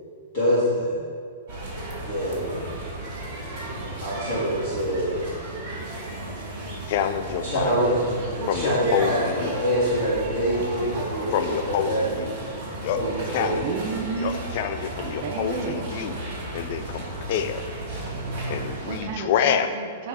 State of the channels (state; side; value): inverted; both; correlation -0.33